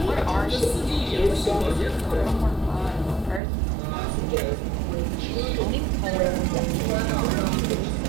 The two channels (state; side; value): drops out; left; at 3.4 s